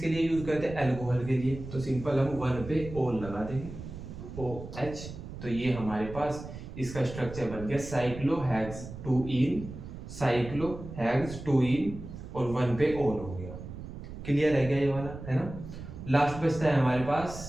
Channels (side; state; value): right; noise; rumble, 11 dB below the sound